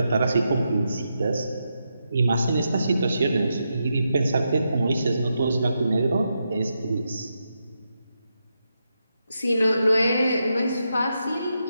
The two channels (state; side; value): inverted; both; correlation -0.85